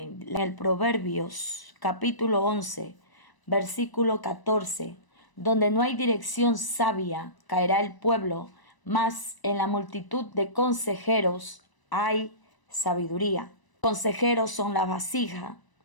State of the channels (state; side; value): late; right; 1.0 ms